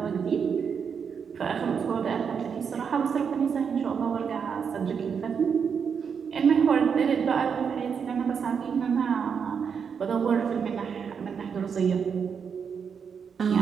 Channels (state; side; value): quieter; left; 6.6 dB